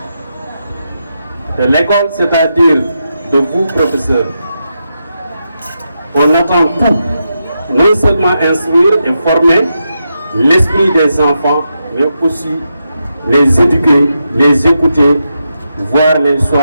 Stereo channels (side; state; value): both; inverted; correlation -0.85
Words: De l'école, c'est-à-dire de vous, professeurs, on attend tout, non seulement instruire et former l'esprit des enfants, mais aussi les éduquer, les écouter, voire les